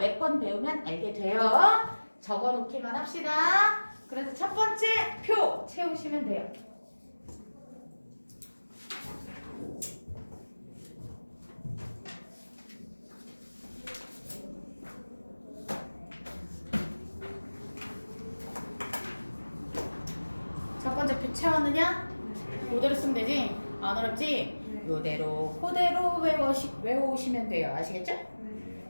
배우면 알게 돼요. 적어놓기만 합시다. 그래서 첫 번째 표 채우시면 돼요. 첫 번째 표 채웠느냐? 그대로 쓰면 되지? 안 어렵지? 이대로 그대로 외워오시면 돼요. 아시겠죠?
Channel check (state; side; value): inverted; both; correlation -1.00